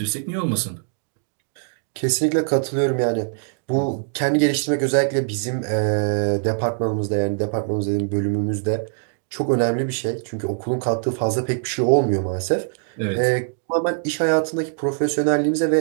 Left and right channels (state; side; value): silent; left; digital silence